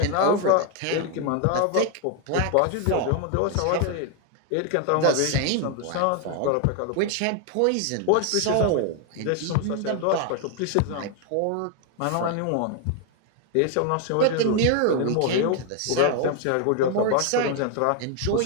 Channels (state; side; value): different; both; correlation 0.01